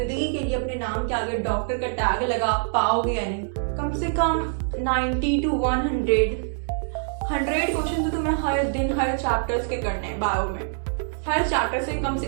के लिए अपने नाम के आगे डॉक्टर का टैग लगा पाओगे या नहीं? कम से कम 90 to 100 क्वेश्चन तो तुम्हें हर दिन हर चैप्टर्स के करने हैं। बायो में हर चैप्टर से कम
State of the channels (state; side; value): silent; left; 62 dB below the other